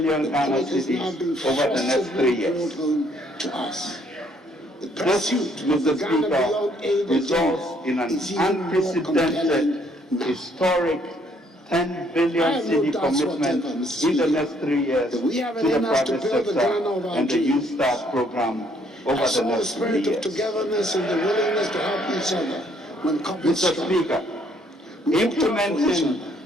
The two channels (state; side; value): normal; both; correlation 0.66